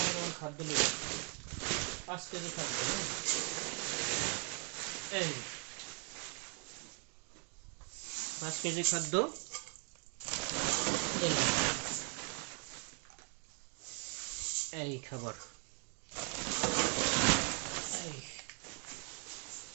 খাদ্য নেব, 5 কেজি খাদ্য। এই 5 কেজি খাদ্য, এই খাবার,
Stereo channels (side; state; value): left; quieter; 38.8 dB